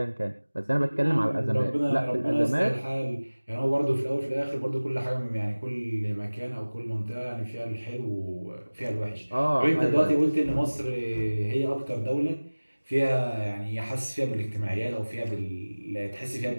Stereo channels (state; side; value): inverted; both; correlation -1.00